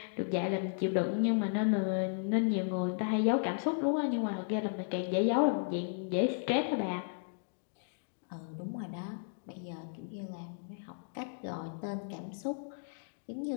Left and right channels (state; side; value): silent; right; digital silence